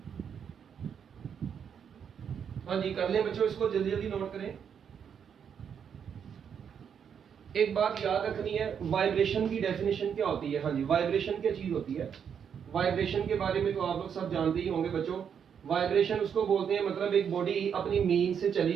हाँ जी कर लें बच्चों, इसको जल्दी जल्दी नोट करें। एक बात याद रखनी है, वाइब्रेशन की डेफिनेशन क्या होती है? हाँ जी, वाइब्रेशन क्या चीज होती है? वाइब्रेशन के बारे में तो आप लोग सब जानते ही होंगे बच्चों। वाइब्रेशन उसको बोलते हैं, मतलब एक बॉडी अपनी मीन से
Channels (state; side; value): quieter; left; 7.6 dB